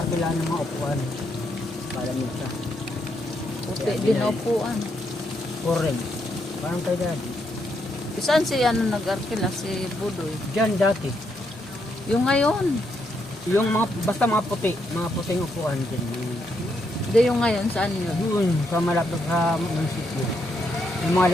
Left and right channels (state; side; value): normal; both; correlation 0.78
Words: ng mga upuan. Palamig siya. Puti din na upuan. Orange. Parang kay daddy. Saan si ano nag-arkila? Si Budoy. Diyan dati. Yung ngayon. Yung mga, basta mga puting upuan dyan. Hindi yung ngayon. Saan yun? Doon, sa malapit sa munisipyo. Yung